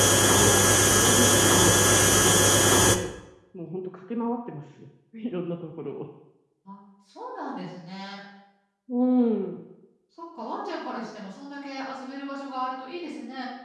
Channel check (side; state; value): both; identical; correlation 1.00